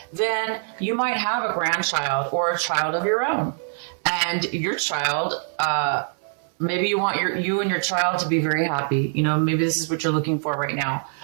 then you might have a grandchild or a child of your own. And your child, maybe you want you and your child to be very happy. Maybe this is what you're looking for right now.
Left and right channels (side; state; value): left; silent; 63 dB below the other